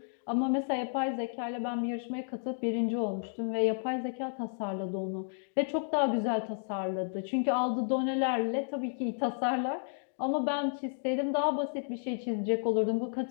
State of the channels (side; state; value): right; silent; digital silence